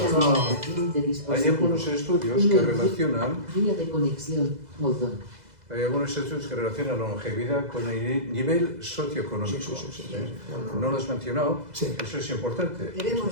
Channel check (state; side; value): late; left; 2.0 ms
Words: algunos estudios que relacionan la longevidad con el nivel socioeconómico. No lo has mencionado, eso es importante. Lo